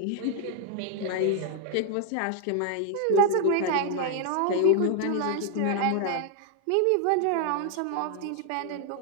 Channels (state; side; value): different; both; correlation 0.01